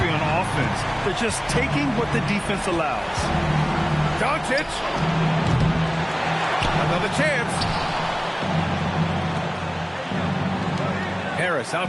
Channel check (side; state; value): both; identical; correlation 1.00